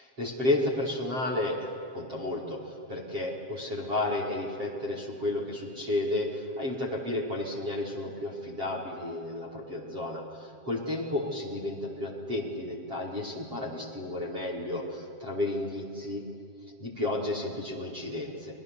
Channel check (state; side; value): late; left; 7.5 ms